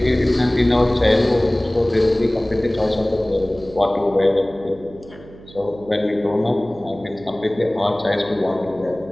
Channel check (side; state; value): right; noise; hum, 20 dB below the sound